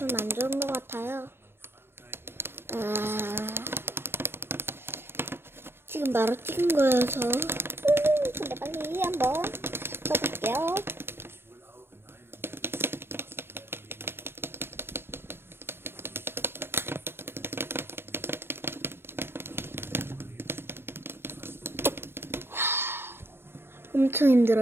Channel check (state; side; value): late; left; 0.11 ms